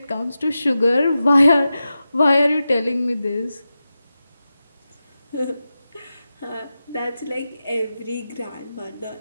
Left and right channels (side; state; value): both; inverted; correlation -0.92